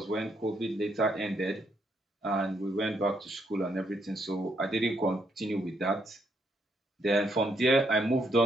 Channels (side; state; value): both; normal; correlation 0.75